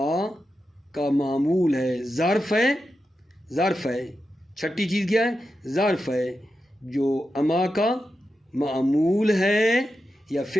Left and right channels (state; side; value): normal; both; correlation 0.89